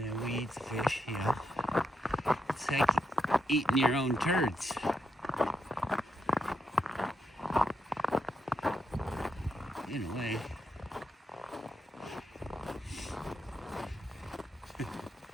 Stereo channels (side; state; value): both; normal; correlation 0.82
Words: then we eat the fish, you know. It's like eating your own turds. In a way.